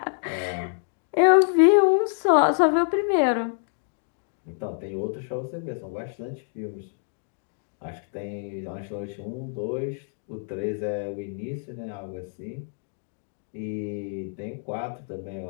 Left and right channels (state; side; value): silent; right; 60 dB below the other